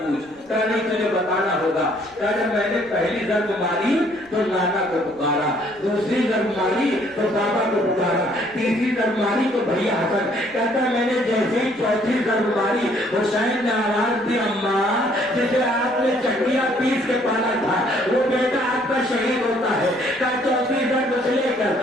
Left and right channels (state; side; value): noise; right; rumble, 28 dB below the sound